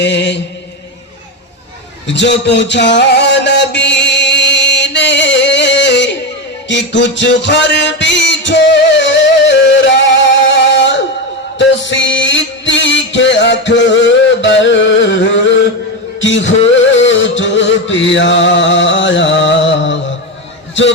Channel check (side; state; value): both; normal; correlation 0.14